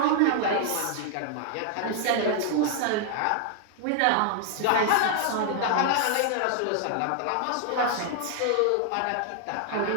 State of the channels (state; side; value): different; both; correlation 0.00